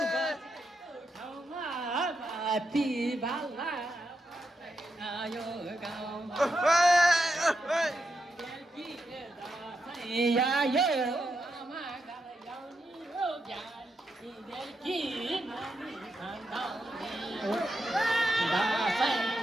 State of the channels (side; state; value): both; normal; correlation 0.84